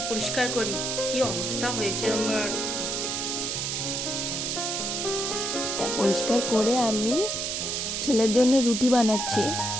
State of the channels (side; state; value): right; noise; hiss, 2 dB below the sound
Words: পরিষ্কার করি, কি অবস্থা হয়েছে আমার। পরিষ্কার করে আমি ছেলের জন্য রুটি বানাচ্ছি।